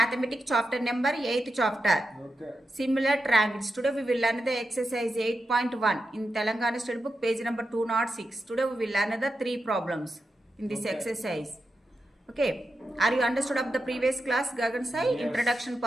chapter number 8th chapter. Okay. Similar triangles. Today we will learn the exercise 8.1 in Telangana State Book page number 206. Today we will learn the 3 problems in this exercise. Okay. Are you understood of the previous class Gagan Sai? Yes. Introduction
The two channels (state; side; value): normal; both; correlation 0.88